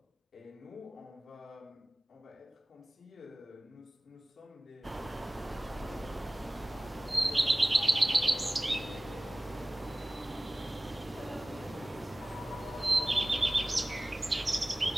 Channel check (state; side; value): normal; both; correlation 0.98